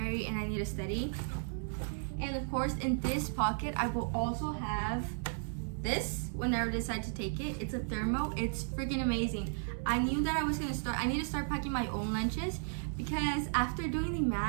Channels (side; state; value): left; silent; 55 dB below the other